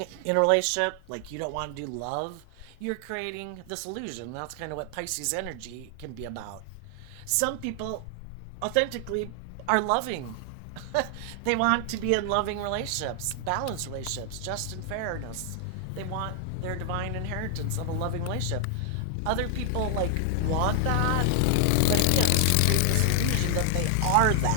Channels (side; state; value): both; different; correlation 0.00